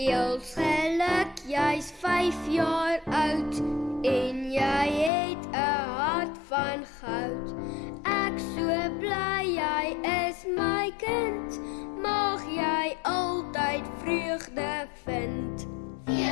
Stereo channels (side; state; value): right; drops out; at 5.1 s